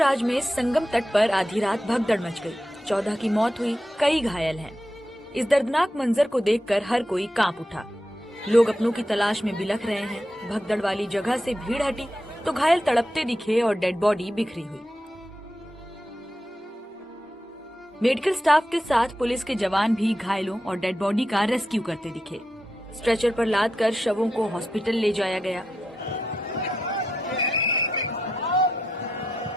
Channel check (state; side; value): normal; both; correlation 0.87